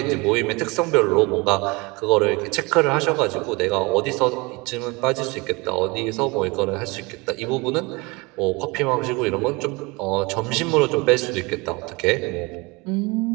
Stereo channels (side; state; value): left; quieter; 26.0 dB